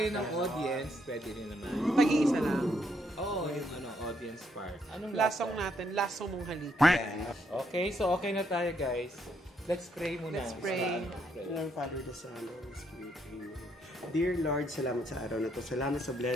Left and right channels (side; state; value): both; normal; correlation 0.74